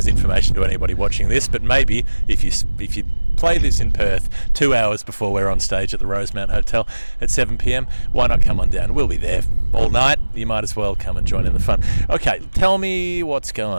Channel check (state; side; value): inverted; both; correlation -1.00